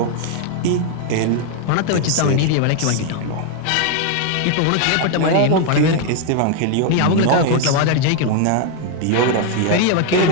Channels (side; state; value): both; different; correlation 0.01